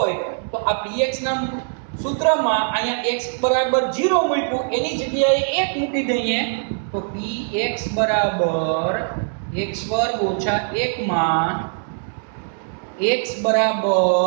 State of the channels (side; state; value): left; silent; digital silence